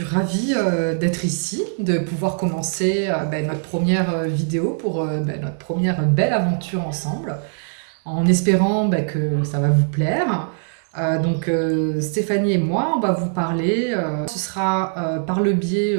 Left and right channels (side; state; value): left; silent; digital silence